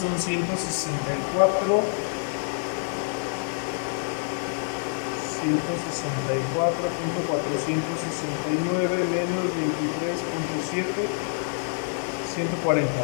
164. 164.469 menos 23.7, 140.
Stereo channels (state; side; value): silent; right; 60 dB below the other